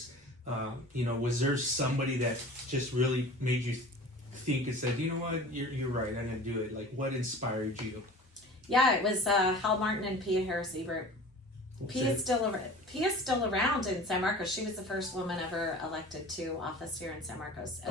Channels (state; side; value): normal; both; correlation 0.40